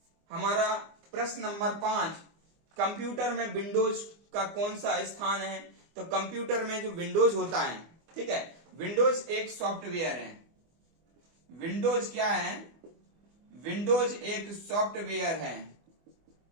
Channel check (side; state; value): left; late; 24 ms